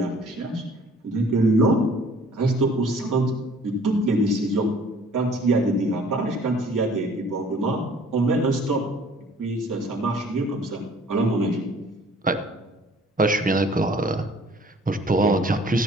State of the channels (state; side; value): normal; both; correlation 0.54